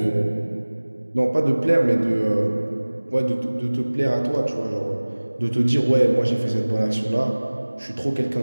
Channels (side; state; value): both; inverted; correlation -1.00